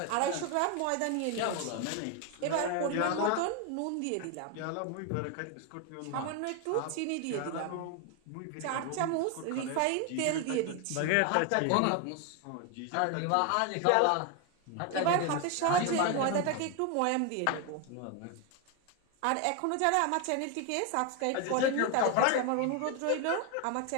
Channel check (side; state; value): both; different; correlation 0.01